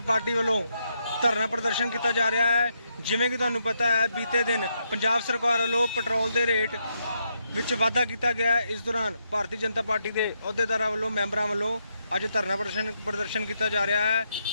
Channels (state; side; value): inverted; both; correlation -0.80